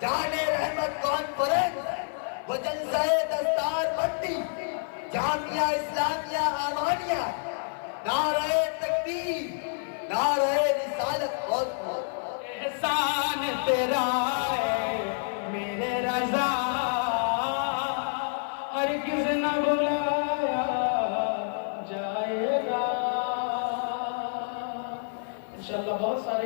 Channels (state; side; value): silent; right; digital silence